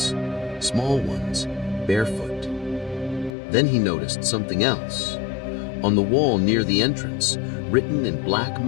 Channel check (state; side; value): drops out; right; at 3.3 s